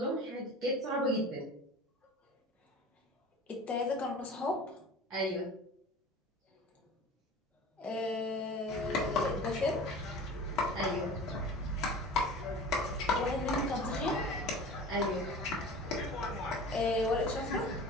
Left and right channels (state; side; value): normal; both; correlation 0.39